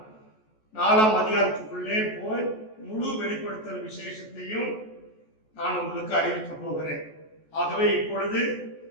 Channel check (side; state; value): right; late; 14 ms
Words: 4ஆம் அதிகாரத்துக்குள்ளே போய் முழு வெளிப்படுத்தல் விசேஷத்தையும் நான் உங்களுக்கு அறிவிக்கப் போகிறேன். ஆகவே இப்பொழுது